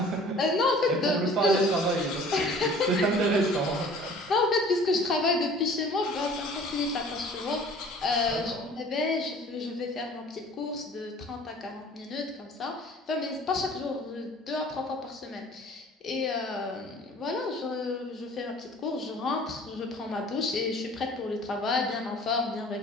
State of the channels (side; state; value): both; normal; correlation 0.49